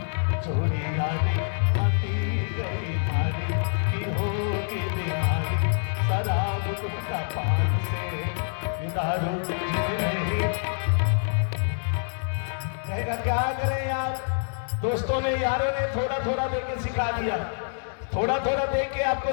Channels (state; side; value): silent; right; digital silence